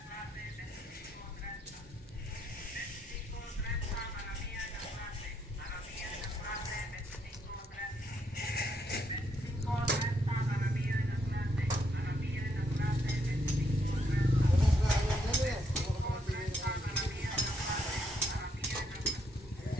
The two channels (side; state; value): both; normal; correlation 0.75